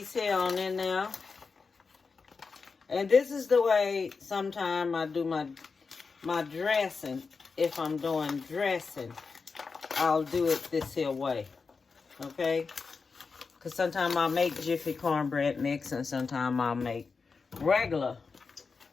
here on in now. And this is the way sometimes I do my dressing. If I'm doing dressing, I'll do it this here way. Okay? Because sometimes I'll make Jiffy cornbread mix, and sometimes I'll make regular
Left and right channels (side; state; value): right; quieter; 4.8 dB